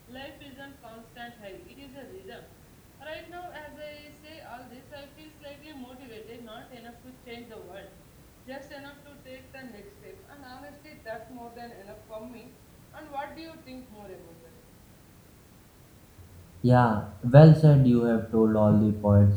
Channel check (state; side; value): identical; both; correlation 1.00